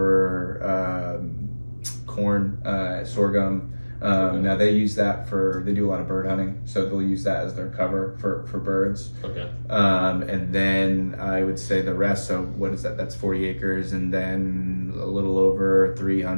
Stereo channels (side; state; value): both; inverted; correlation -1.00